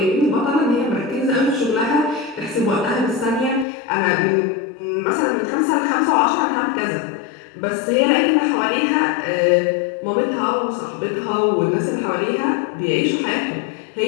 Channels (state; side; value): drops out; right; at 3.7 s